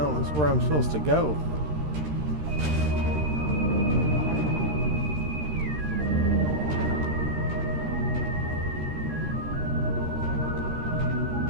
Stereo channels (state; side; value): late; left; 13 ms